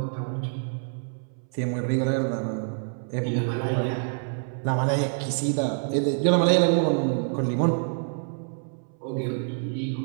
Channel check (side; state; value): left; silent; 60 dB below the other